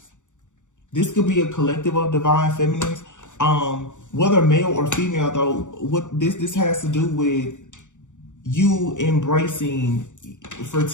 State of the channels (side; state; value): right; late; 0.85 ms